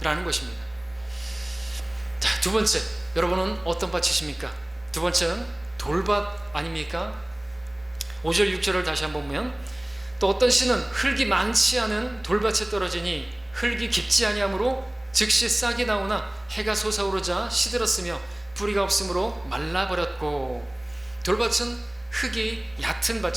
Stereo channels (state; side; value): noise; right; hum, 30 dB below the sound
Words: 것입니다. 자, 두 번째, 여러분은 어떤 밭이십니까? 두 번째는 돌밭 아닙니까? 5절 6절을 다시 한번 보면, 또 어떤 씨는 흙이 많지 않은 돌밭에 떨어지니 흙이 깊지 아니하므로 즉시 싹이 나오나 해가 솟아오르자 시들었으며 뿌리가 없으므로 말라버렸고. 돌밭은 흙이 얕은